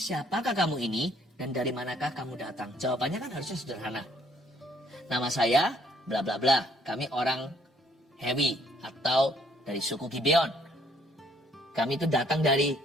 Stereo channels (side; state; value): both; normal; correlation 0.65